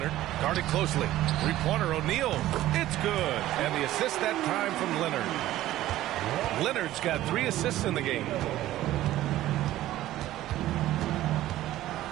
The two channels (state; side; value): quieter; left; 14.6 dB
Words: guarded closely. Three-pointer, O'Neal. It's good. And the assist that time from Leonard. Leonard's got 3 assists in the game.